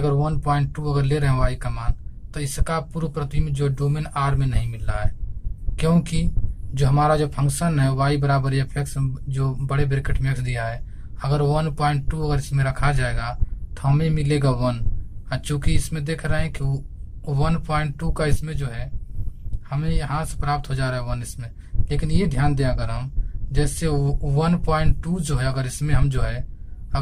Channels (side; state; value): both; identical; correlation 1.00